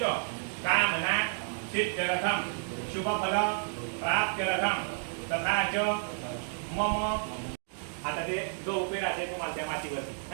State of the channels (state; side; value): silent; left; digital silence